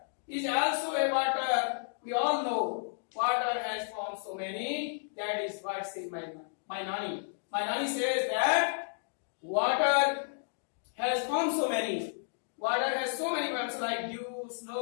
is also a water. We all know water has formed so many. That is what says my Nani. My Nani says that water has formed so many. Water has so many forms like dew,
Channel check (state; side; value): silent; right; digital silence